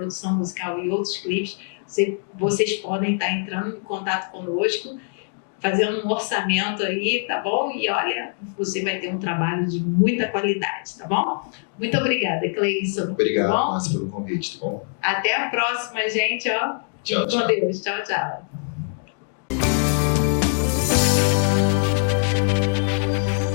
musical e outros clipes, vocês podem estar entrando em contato conosco, fazendo um orçamento aí, tá bom? E olha, você vai ter um trabalho de muita qualidade, tá bom? Muito obrigada, Cleison. Obrigado, Márcia, pelo convite, tá bom? Até a próxima, gente, ó. Tchau, Com Deus. Tchau, tchau.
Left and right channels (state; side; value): silent; right; 56 dB below the other